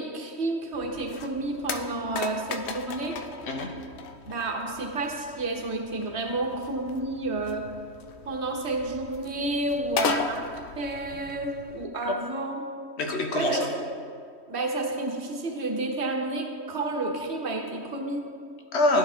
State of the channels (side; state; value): right; late; 3.1 ms